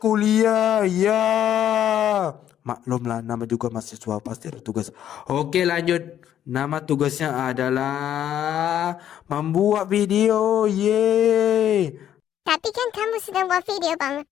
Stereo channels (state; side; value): quieter; right; 10.6 dB